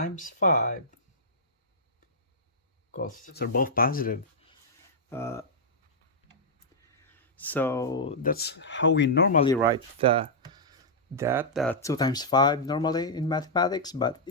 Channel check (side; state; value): both; normal; correlation -0.09